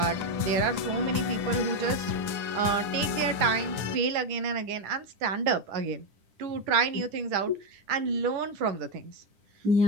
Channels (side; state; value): left; late; 10 ms